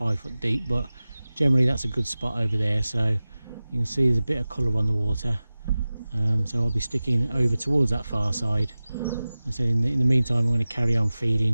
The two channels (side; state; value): both; inverted; correlation -0.97